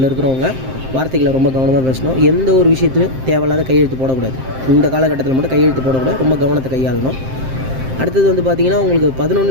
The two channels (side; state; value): left; late; 7.7 ms